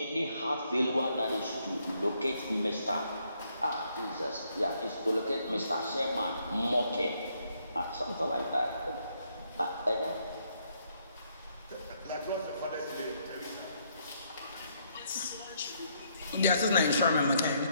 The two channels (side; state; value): both; inverted; correlation -0.72